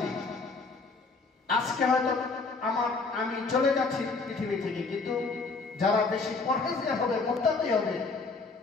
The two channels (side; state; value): right; quieter; 4.1 dB